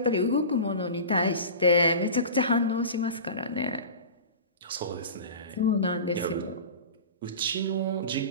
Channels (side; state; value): both; inverted; correlation -0.33